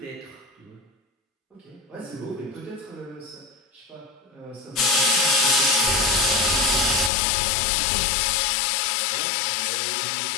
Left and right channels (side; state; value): right; drops out; at 7.1 s